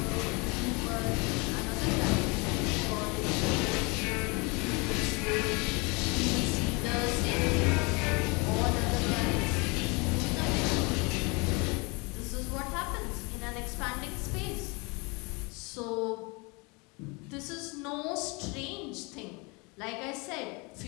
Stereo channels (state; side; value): quieter; right; 28.7 dB